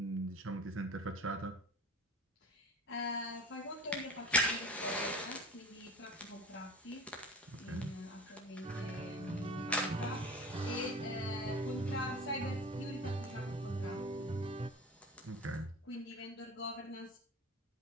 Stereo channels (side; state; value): both; normal; correlation 0.38